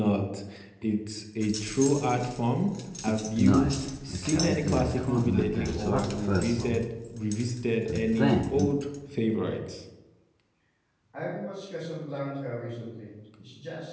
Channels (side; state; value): both; identical; correlation 1.00